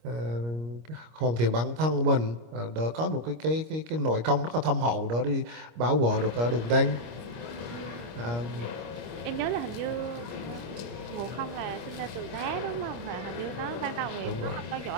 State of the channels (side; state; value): left; late; 25 ms